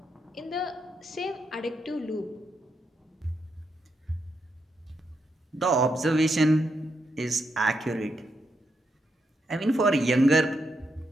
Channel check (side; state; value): both; normal; correlation 0.82